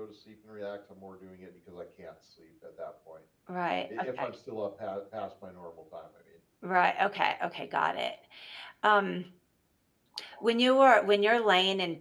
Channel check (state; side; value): identical; both; correlation 1.00